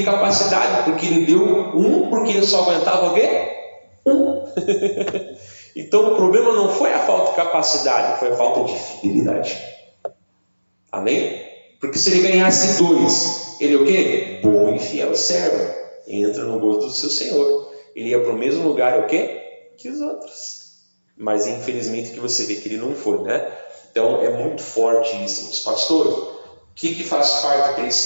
capacidade, porque ele deu porque ele só aguentava o quê? Então o problema não foi a falta de capacidade, foi a falta de fidelidade. Amém? Porque se ele ganhasse 2, ele é o quê? Bom e fiel servo. Entra no gosto do seu Senhor. Ele ia para o mesmo lugar, o quê? Que os outros. Mas infelizmente que você vê que ele não foi, né? Então é muito forte isso. Mas, pastor, o que faz parte do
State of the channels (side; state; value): both; inverted; correlation -1.00